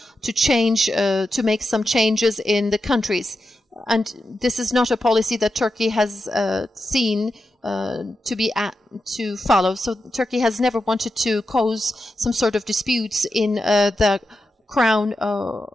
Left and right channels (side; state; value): both; normal; correlation 0.89